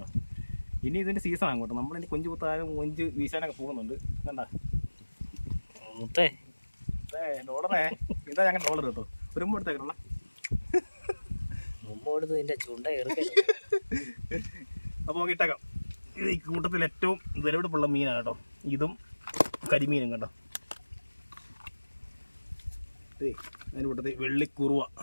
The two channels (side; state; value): both; inverted; correlation -1.00